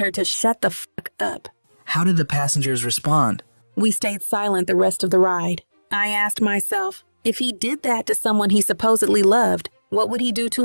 to shut the fuck up. How did the passengers respond? We stayed silent the rest of the ride. I asked myself, if he did that to someone he supposedly loved, what would he do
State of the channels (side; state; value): both; inverted; correlation -1.00